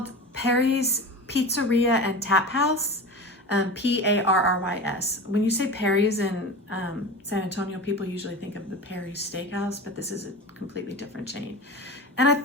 Perry's Pizzeria and Tap House. Parrys. When you say Perry's in San Antonio, people usually think of the Perry's Steakhouse, but this is a completely different chain. And I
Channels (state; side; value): normal; both; correlation 0.31